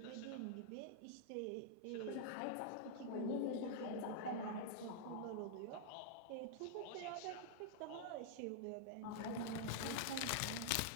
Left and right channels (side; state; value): both; different; correlation -0.01